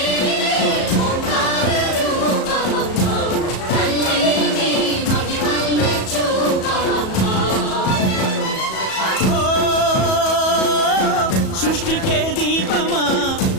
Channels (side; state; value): right; late; 37 ms